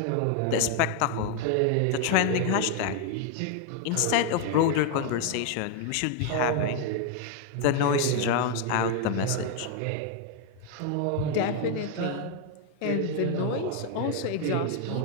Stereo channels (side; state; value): both; different; correlation 0.01